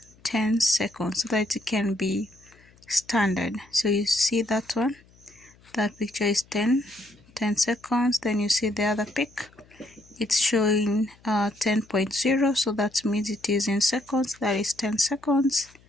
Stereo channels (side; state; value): left; noise; hum, 28 dB below the sound